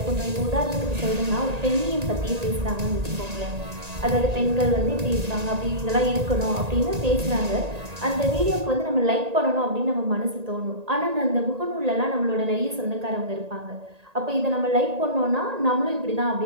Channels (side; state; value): left; late; 1.8 ms